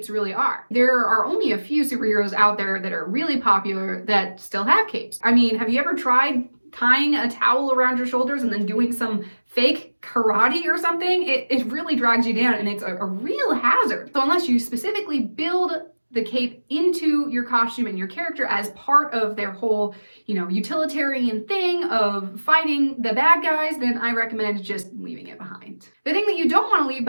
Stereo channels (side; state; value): both; inverted; correlation -1.00